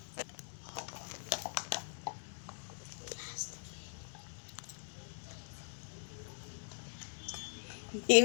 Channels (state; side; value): silent; right; 50 dB below the other